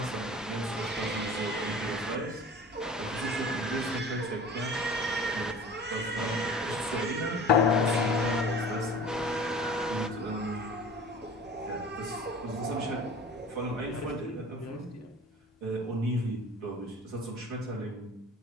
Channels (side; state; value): both; normal; correlation 0.42